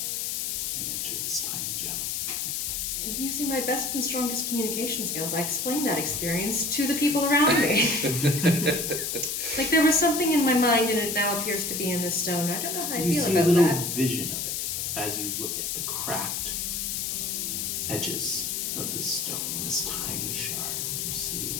and enter this tiny gem. Using my best and strongest communication skills, I explain that experience to the people around me. Like there was something in my mind and it now appears to be in this stone. I don't know how I You feel see about a little that. vision of it as you look at the cracked edges of this stone, this tiny shard. You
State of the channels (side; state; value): left; noise; hiss, 2 dB below the sound